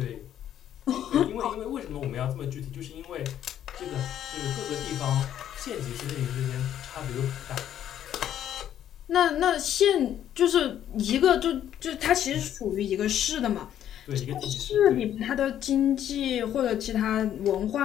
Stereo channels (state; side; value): quieter; right; 10.7 dB